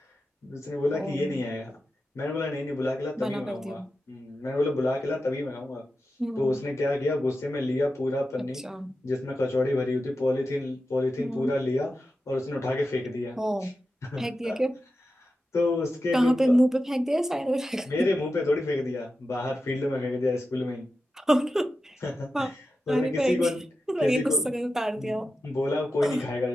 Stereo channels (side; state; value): both; normal; correlation 0.91